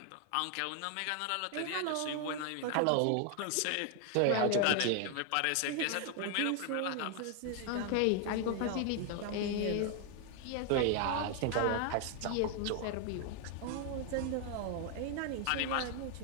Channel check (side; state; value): both; different; correlation 0.01